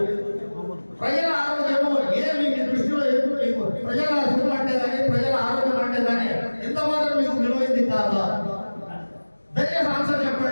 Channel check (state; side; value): inverted; both; correlation -1.00